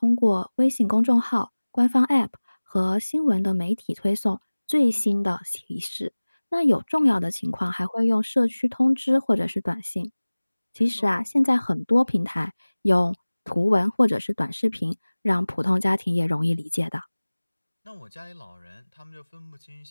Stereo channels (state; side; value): inverted; both; correlation -1.00